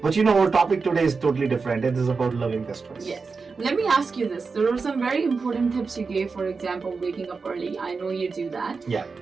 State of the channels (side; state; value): left; quieter; 4.7 dB